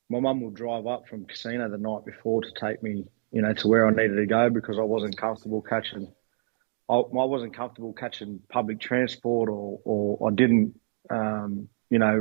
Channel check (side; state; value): left; silent; digital silence